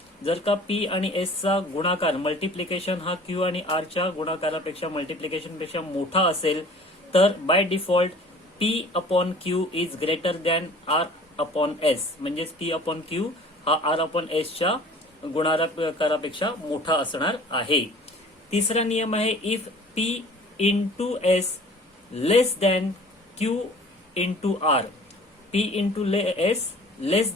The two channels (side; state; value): both; normal; correlation 0.47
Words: जर का P आणि S चा गुणाकार मल्टिप्लिकेशन हा Q आणि R च्या गुणाकारापेक्षा मल्टिप्लिकेशन पेक्षा मोठा असेल तर by default P upon Q is greater than R upon S. म्हणजेच P अपॉन क्यू हा R अपॉन एस च्या गुणाकारापेक्षा मोठा असणार आहे. तिसरा नियम आहे, if P into S less than Q into R. P into S less